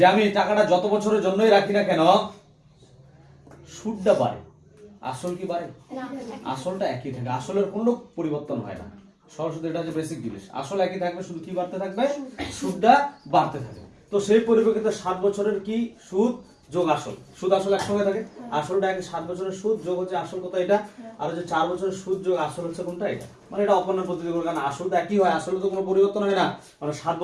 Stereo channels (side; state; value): both; identical; correlation 1.00